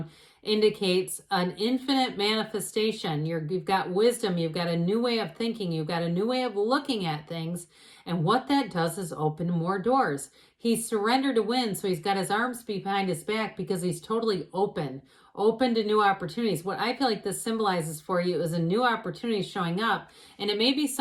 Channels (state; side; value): identical; both; correlation 1.00